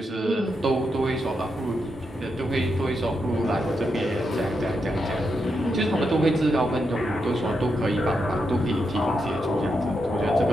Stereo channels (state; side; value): normal; both; correlation 0.84